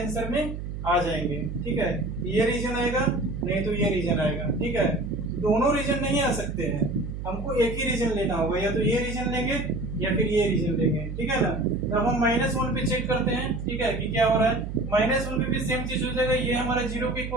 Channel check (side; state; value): right; noise; hum, 7 dB below the sound